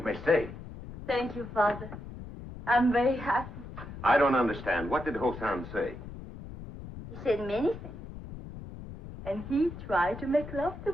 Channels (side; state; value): left; noise; rumble, 12 dB below the sound